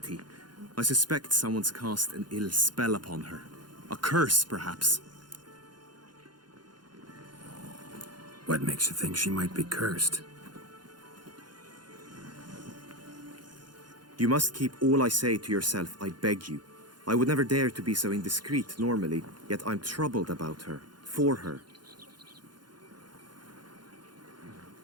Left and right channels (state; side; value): late; left; 0.71 ms